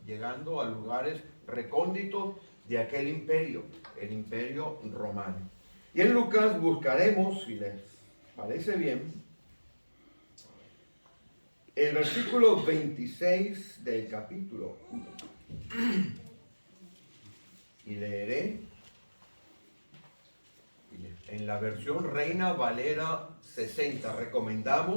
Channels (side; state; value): both; inverted; correlation -1.00